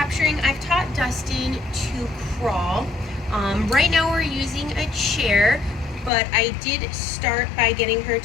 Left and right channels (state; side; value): drops out; right; at 6.1 s